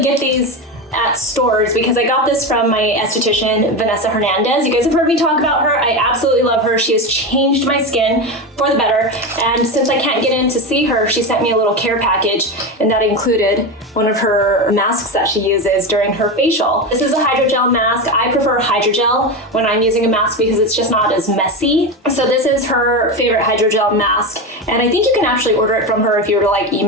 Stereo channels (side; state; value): both; normal; correlation 0.18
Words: get these at stores because I got this from my esthetician, Vanessa Hernandez. You guys have heard me talk about her. I absolutely love her. She has changed my skin for the better. And since I can't get in to see her, she sent me a little care package, and that included one of her masks that she uses during her facial. This is a hydrogel mask. I prefer hydrogel when I'm using a mask because it's just not as messy. So this is her favorite hydrogel mask. And I think you can actually order it from her if you were to